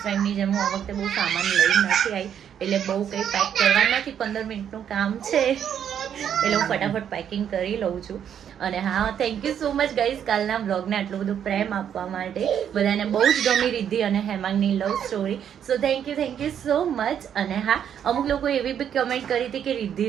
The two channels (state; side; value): quieter; left; 9.0 dB